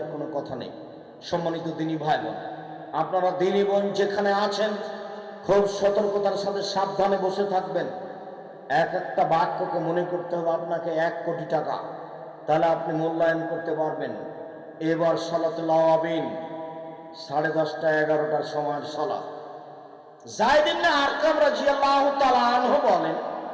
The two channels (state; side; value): identical; both; correlation 1.00